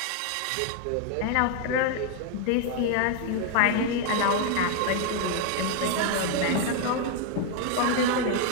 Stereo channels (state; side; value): different; both; correlation 0.00